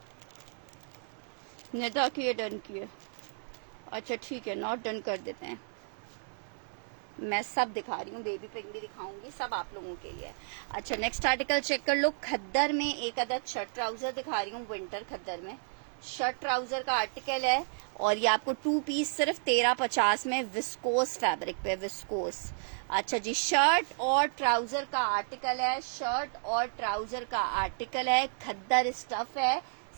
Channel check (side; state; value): left; silent; digital silence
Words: नेता किए डन किए, अच्छा ठीक है, नॉट डन कर देते हैं। मैं सब दिखा रही हूँ, बेबी पिंक भी दिखाऊंगी, सब आप लोगों के लिए। अच्छा नेक्स्ट आर्टिकल चेक कर लो, खद्दर में एक अदद शर्ट ट्राउजर दिखा रही हूँ, विंटर खद्दर में शर्ट ट्राउजर का आर्टिकल है, और ये आपको 2 पीस सिर्फ 1350 में, विस्कोस फैब्रिक पे, विस्कोस। अच्छा जी, शर्ट और ट्राउजर का आर्टिकल है, शर्ट और ट्राउजर का आर्टिकल है, खद्दर स्टफ है,